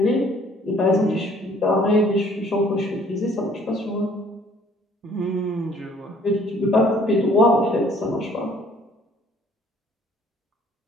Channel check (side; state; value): both; normal; correlation 0.58